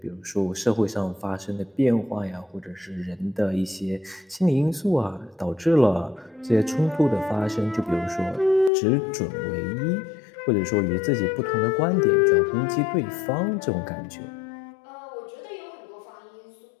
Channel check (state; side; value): drops out; right; at 8.7 s